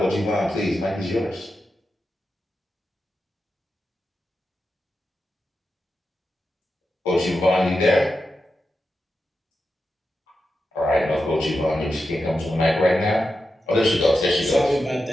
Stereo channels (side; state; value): both; normal; correlation 0.89